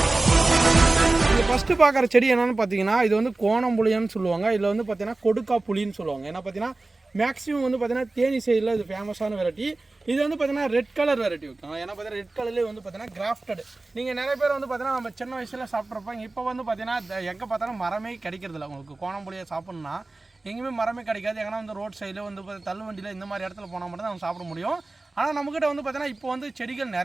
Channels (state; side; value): quieter; left; 3.2 dB